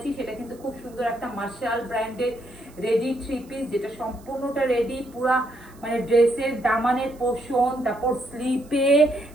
সেটা কিন্তু খুব সুন্দর একটা মার্শাল ব্র্যান্ডের রেডি থ্রি পিস, যেটা সম্পূর্ণটা রেডি, পুরা মানে ড্রেসের দামানের পোর্শন, তারপর স্লিপে,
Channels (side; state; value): right; noise; hiss, 27 dB below the sound